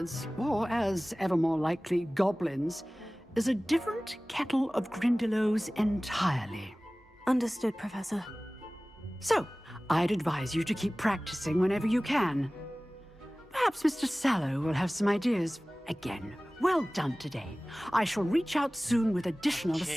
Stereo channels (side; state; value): both; normal; correlation 0.98